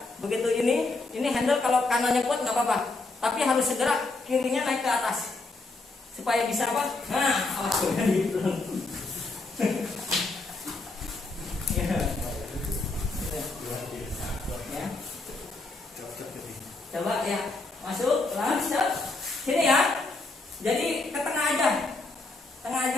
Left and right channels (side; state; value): right; quieter; 3.4 dB